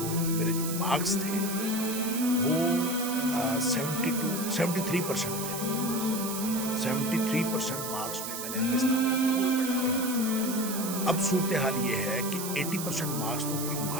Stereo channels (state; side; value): noise; right; hiss, 6 dB below the sound